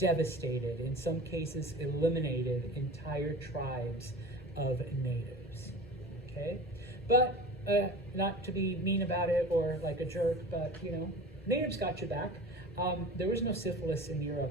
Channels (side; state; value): both; normal; correlation 0.36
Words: in some cases eliminated entire tribes of natives, okay? But not to be mean about it or like a jerk, but natives got you back. There was no syphilis in